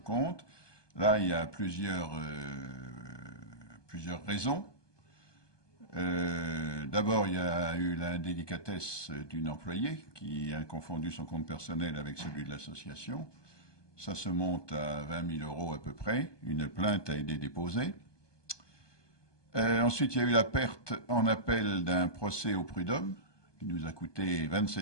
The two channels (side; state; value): right; late; 1.2 ms